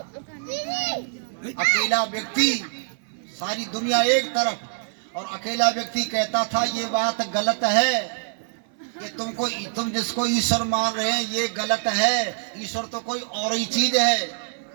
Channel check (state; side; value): silent; left; 57 dB below the other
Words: अकेला व्यक्ति, सारी दुनिया एक तरफ, और अकेला व्यक्ति कहता था ये बात गलत है कि तुम जिसको ईश्वर मान रहे हैं ये गलत है, ईश्वर तो कोई और ही चीज है।